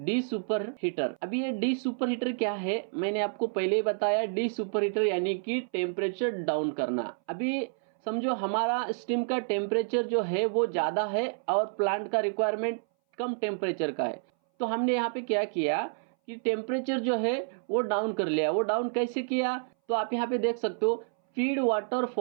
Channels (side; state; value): left; silent; 58 dB below the other